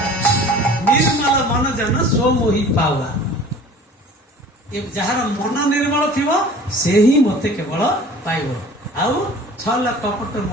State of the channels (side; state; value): both; normal; correlation 0.45